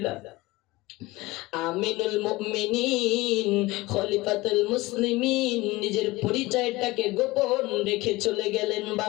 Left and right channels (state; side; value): quieter; right; 20.6 dB